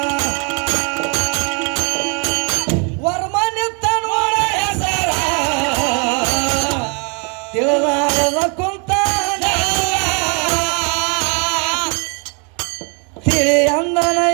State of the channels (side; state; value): left; quieter; 35.6 dB